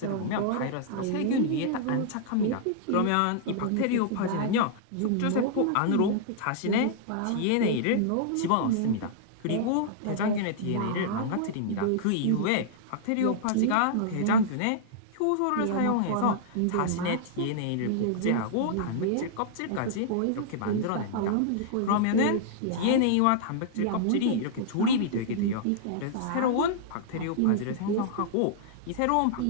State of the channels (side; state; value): both; different; correlation -0.02